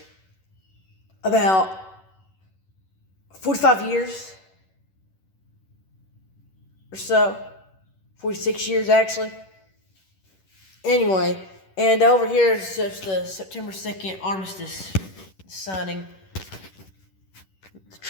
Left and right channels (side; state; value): right; late; 11 ms